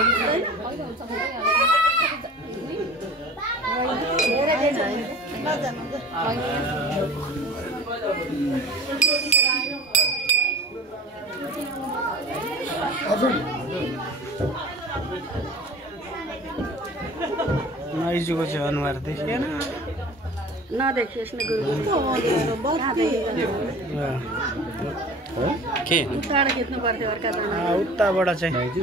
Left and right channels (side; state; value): both; normal; correlation 0.41